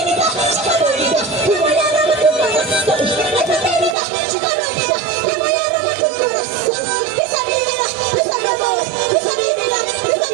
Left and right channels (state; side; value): drops out; left; at 4.0 s